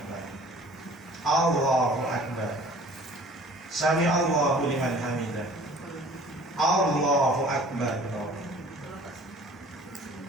Allahu Akbar. Sami Allahu liman hamidah. Allahu Akbar.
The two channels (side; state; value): both; normal; correlation 0.49